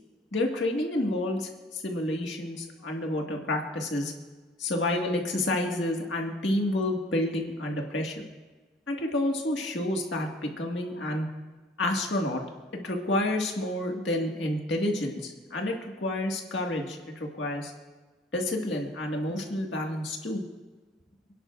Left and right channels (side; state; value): both; normal; correlation 0.52